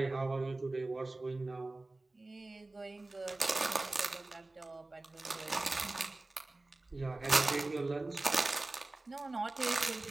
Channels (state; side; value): quieter; left; 3.0 dB